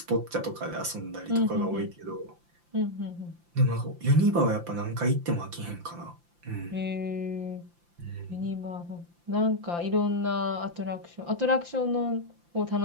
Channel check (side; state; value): left; late; 5.8 ms